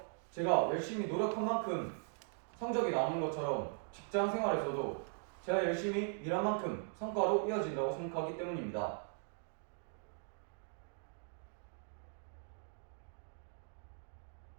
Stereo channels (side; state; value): left; silent; 51 dB below the other